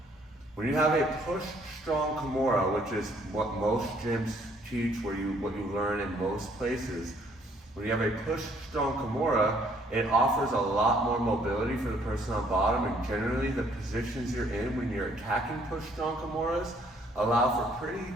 When you have a push strong Kimura, which is what most gyms teach, what you learn in most places, when you have a push strong Kimura, it offers a lot more mobility for the person on bottom, and generally the positions you're in when you're attacking push strong Kimuras allow for pretty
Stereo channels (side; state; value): both; normal; correlation 0.64